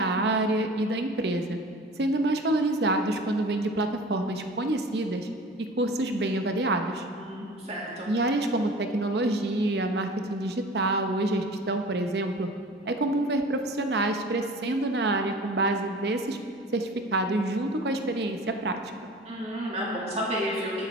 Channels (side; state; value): both; normal; correlation 0.41